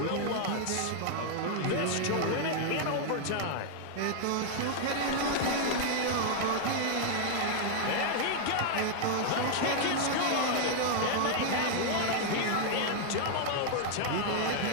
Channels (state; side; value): different; both; correlation 0.00